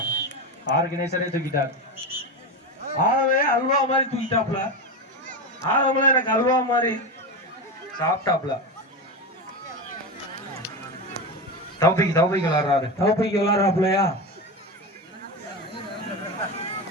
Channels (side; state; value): both; normal; correlation 0.19